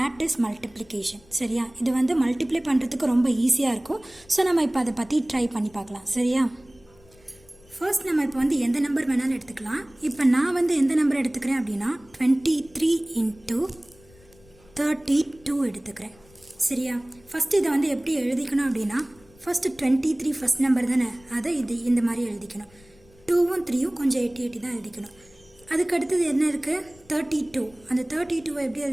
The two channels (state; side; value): noise; left; rumble, 27 dB below the sound